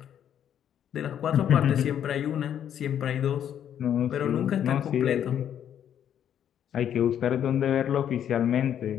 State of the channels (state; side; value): quieter; right; 9.6 dB